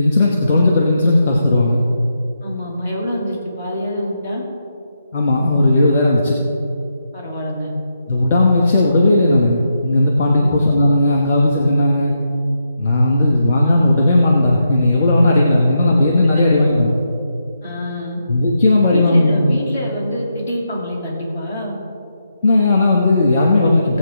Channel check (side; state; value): both; inverted; correlation -0.84